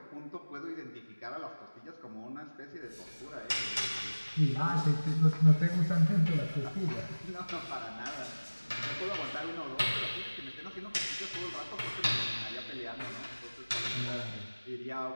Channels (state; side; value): inverted; both; correlation -1.00